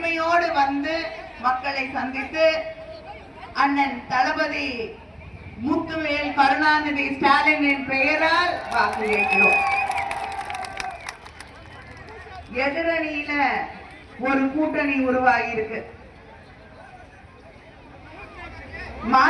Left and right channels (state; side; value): identical; both; correlation 1.00